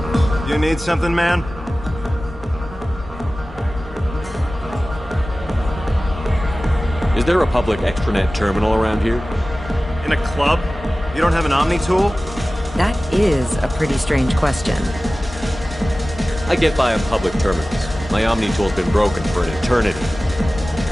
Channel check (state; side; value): normal; both; correlation 0.97